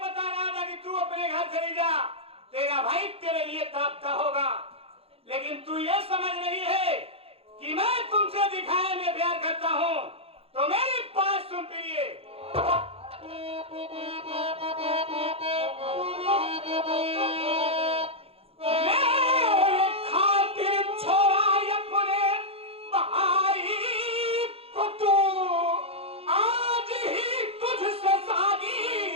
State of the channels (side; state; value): left; late; 0.28 ms